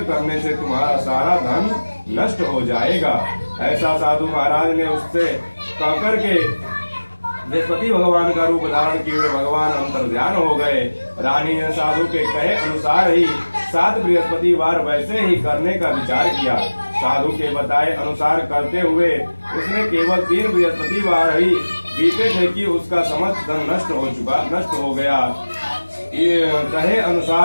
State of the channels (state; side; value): inverted; both; correlation -1.00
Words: करने से तुम्हारा सारा धन नष्ट हो जाएगा। ऐसा साधु महाराज ने उससे कहकर के बृहस्पति भगवान का रूप धारण किए हुए भगवान अंतर्ध्यान हो गए। रानी ने साधु के कहे अनुसार ही 7 बृहस्पतिवार वैसे ही करने का विचार किया। साधु के बताए अनुसार करते हुए उसने केवल 3 बृहस्पतिवार ही बीते थे कि उसका समस्त धन नष्ट हो गया। कहे